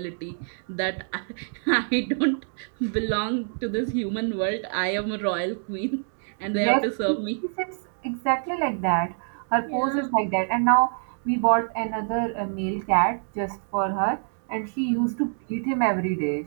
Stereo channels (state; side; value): silent; left; digital silence